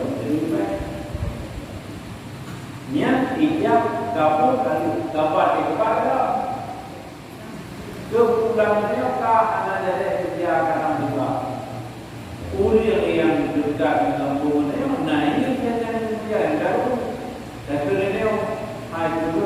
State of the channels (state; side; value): identical; both; correlation 1.00